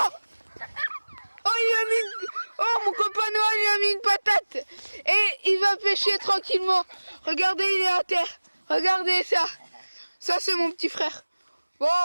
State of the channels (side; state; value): both; inverted; correlation -1.00